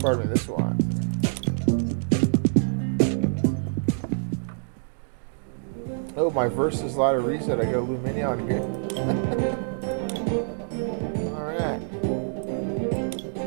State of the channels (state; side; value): silent; left; digital silence